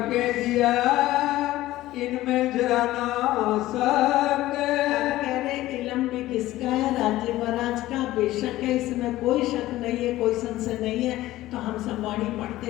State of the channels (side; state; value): right; quieter; 16.0 dB